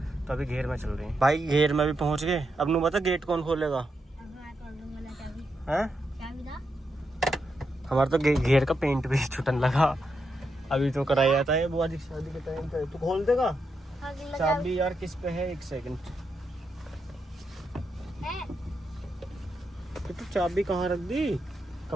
तो अभी घेर में चल रहे हैं भाई, घेर में भी पहुंच गए। अब नु बता गेट कौन खोलेगा है? हमारा तो घेर का पेंट भी छुटन लगा। अभी तो कराया जाता है बुआ जी शादी के टाइम पे। तू खोल देगा चाबी यार? किस पे है? 1 सेकंड। तो चाबी कहाँ रख दी?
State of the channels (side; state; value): both; normal; correlation 0.83